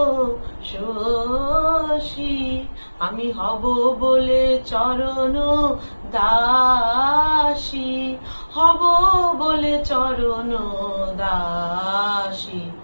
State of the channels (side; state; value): both; inverted; correlation -1.00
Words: শশী। আমি হব বলে চরণ দাসী, হব বলে চরণ দাসী।